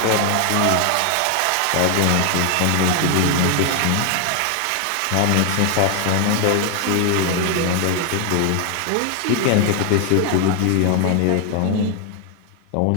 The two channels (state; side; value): different; both; correlation 0.00